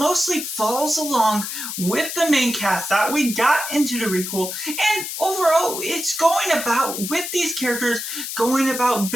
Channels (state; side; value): noise; left; hiss, 6 dB below the sound